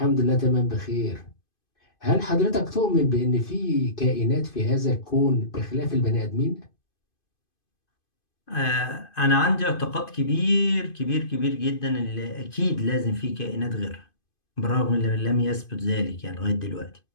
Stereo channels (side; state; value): right; late; 2.5 ms